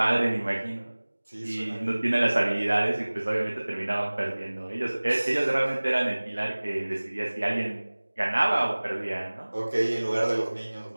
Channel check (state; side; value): inverted; both; correlation -1.00